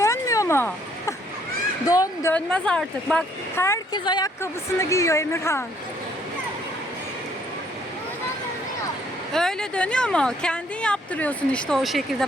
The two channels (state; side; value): normal; both; correlation 0.65